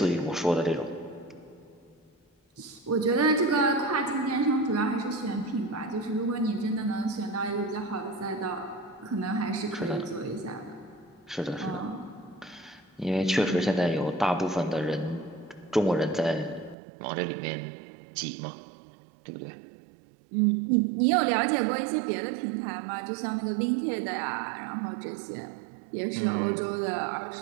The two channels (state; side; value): drops out; left; at 16.8 s